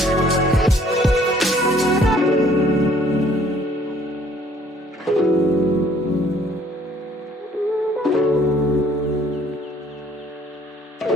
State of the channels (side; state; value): both; normal; correlation 0.60